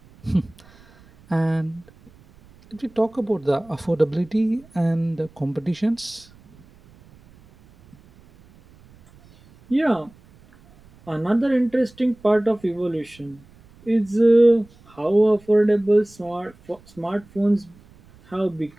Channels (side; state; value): right; noise; rumble, 27 dB below the sound